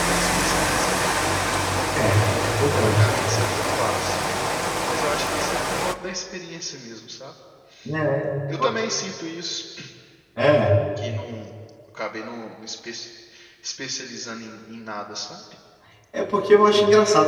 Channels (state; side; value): identical; both; correlation 1.00